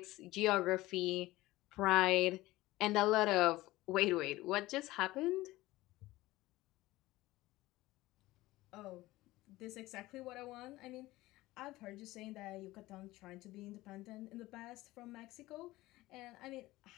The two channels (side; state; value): right; quieter; 18.2 dB